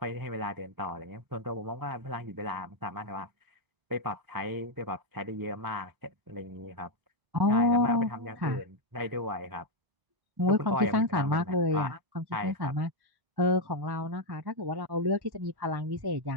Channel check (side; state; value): left; late; 1.1 ms